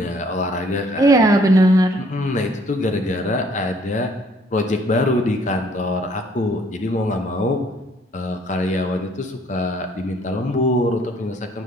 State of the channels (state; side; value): normal; both; correlation 0.62